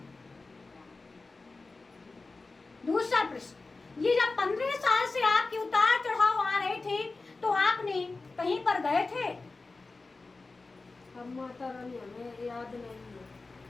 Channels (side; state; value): right; quieter; 3.7 dB